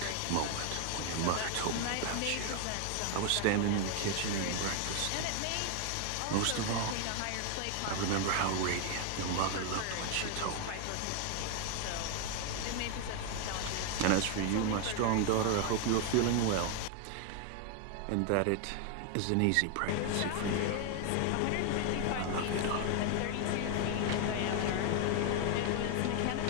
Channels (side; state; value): both; different; correlation 0.01